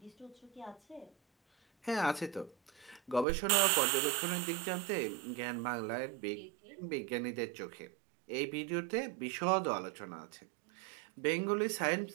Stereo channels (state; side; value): drops out; left; at 3.2 s